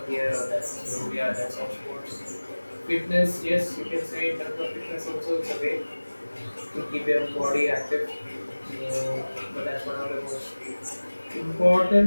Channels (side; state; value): both; inverted; correlation -1.00